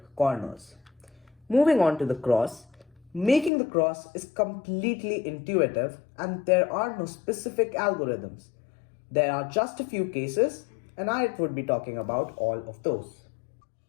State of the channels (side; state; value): right; drops out; at 3.5 s